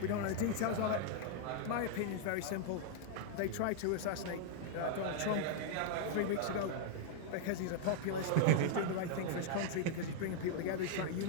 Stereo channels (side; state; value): both; different; correlation -0.01